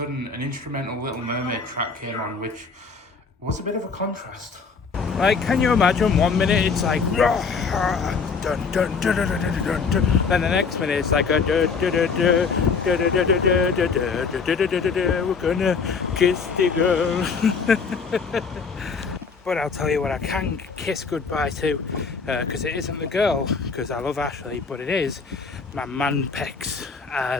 an instrumental Little Mermaid track came on, which was a bit of a contrast. Like, can you imagine, 1 minute it's like dun dun dun dun dun dun dun dun, then the next minute it's like a dun dun dun dun dun dun dun dun dun dun, we're gonna kiss the girl. But I'll tell you what I can kiss goodbye to, because it isn't the girl, because I love Ashley, but it is my man pecs,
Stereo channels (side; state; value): right; quieter; 5.2 dB